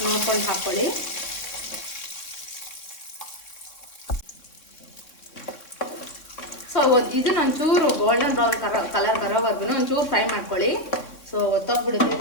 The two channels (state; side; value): late; right; 3.6 ms